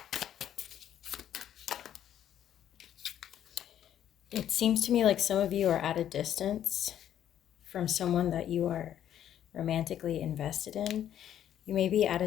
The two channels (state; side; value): quieter; right; 10.6 dB